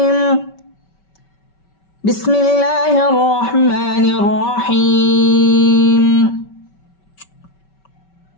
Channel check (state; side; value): late; right; 5.2 ms